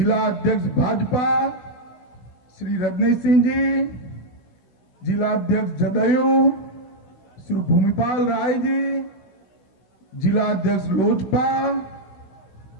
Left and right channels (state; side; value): late; right; 16 ms